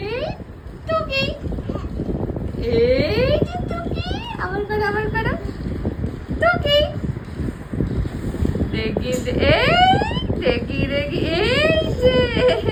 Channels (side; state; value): both; identical; correlation 1.00